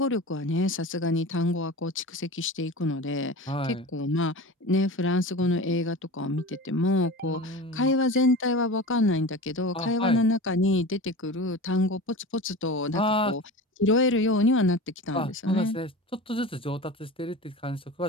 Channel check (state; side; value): normal; both; correlation 0.32